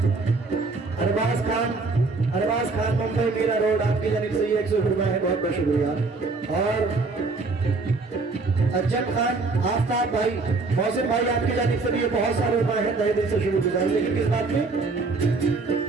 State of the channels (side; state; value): left; quieter; 3.9 dB